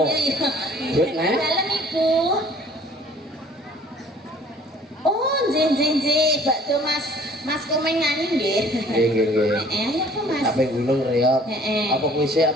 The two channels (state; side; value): normal; both; correlation 0.53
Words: Iya. Duit nek. Dalam Ibu. Oh, nggih, bakdo Mas Komeng nyanyi nggih. Nggih. Apa Mas? Sampai gulung reok. Apa kuwi